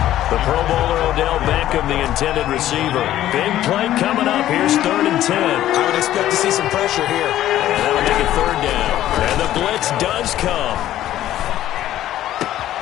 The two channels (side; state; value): right; quieter; 13.1 dB